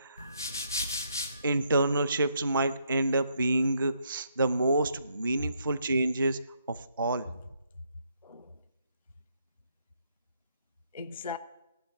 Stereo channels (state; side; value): inverted; both; correlation -0.74